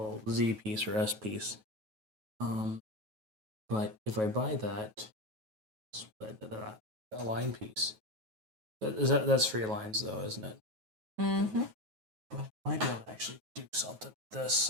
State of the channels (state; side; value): late; left; 9.3 ms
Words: Z piece or S piece. But if I buy that a line piece, that's 3 lines though, isn't it? Mm-hmm. But I might be able to actually do something with this.